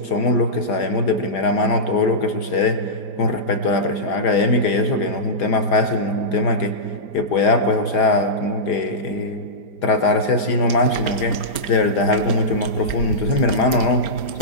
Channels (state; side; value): late; right; 4.9 ms